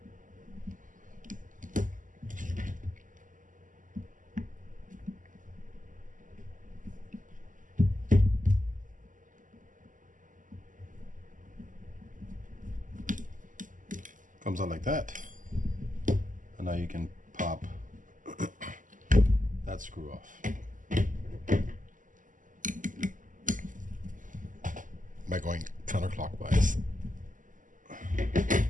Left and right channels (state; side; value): late; left; 0.38 ms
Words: Comes out like that, and now you can pop that screw off by going counterclockwise.